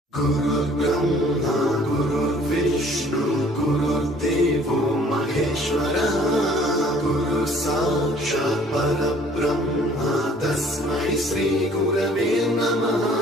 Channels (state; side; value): normal; both; correlation 0.55